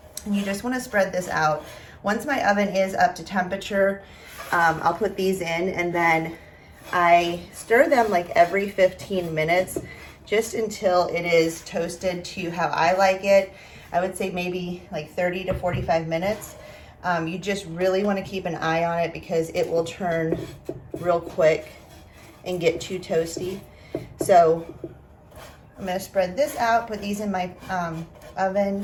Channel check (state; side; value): identical; both; correlation 1.00